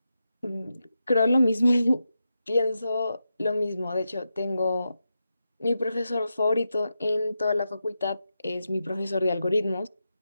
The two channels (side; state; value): both; inverted; correlation -0.88